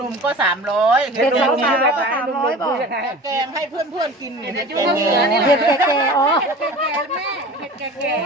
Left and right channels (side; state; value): both; normal; correlation 0.38